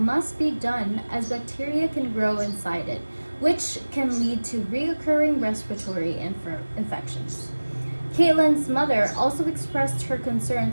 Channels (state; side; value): inverted; both; correlation -1.00